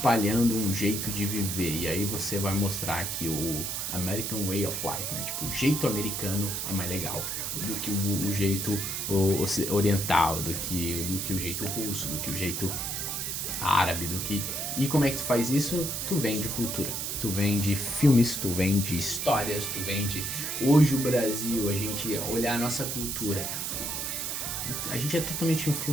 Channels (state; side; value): noise; right; hiss, 3 dB below the sound